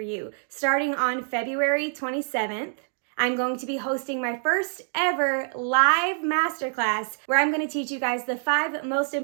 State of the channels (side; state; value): left; silent; 61 dB below the other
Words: you. Starting on February 27th, I'm going to be hosting my first ever live masterclass where I'm going to teach you guys the 5 most